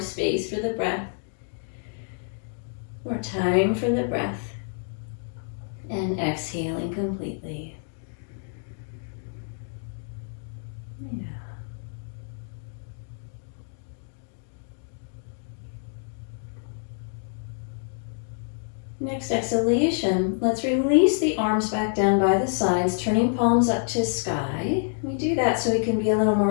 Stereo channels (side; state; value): right; silent; digital silence